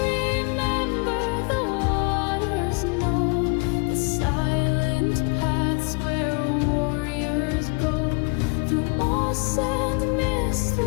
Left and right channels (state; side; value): quieter; right; 33.8 dB